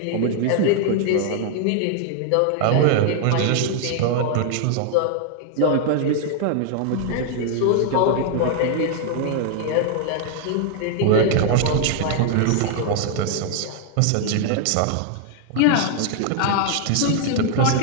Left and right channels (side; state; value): both; different; correlation 0.00